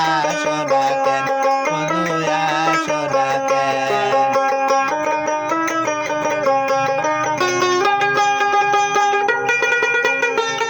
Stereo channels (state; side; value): identical; both; correlation 1.00